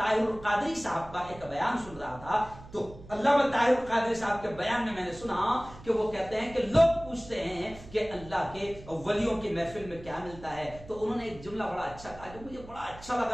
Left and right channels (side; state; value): right; noise; hum, 18 dB below the sound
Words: القادری صاحب کا ایک بیان سن رہا تھا، تو علامہ طاہر القادری صاحب کے بیان میں نے سنا کہ وہ کہتے ہیں کہ لوگ پوچھتے ہیں کہ اللہ کے ولیوں کی محفل میں کیا ملتا ہے، تو انہوں نے ایک جملہ بڑا اچھا کہا جو مجھے بڑا اچھا